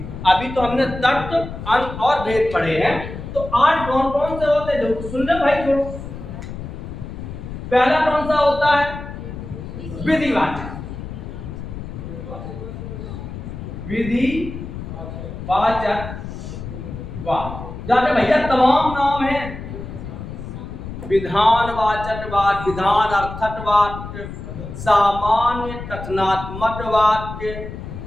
अभी तो हमने तर्क, अंत और भेद पढ़े हैं। तो 8 कौन कौन से होते हैं, जो सुन ले भाई थोड़ा। पहला कौन सा होता है, विधिवाचक। विधिवाचक वाक्य जाके भैया तमाम नाम हैं, विधानवाचक वाक्य, विधान अर्थक वाक्य, सामान्य कथनात्मक वाक्य,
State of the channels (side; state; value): left; noise; rumble, 9 dB below the sound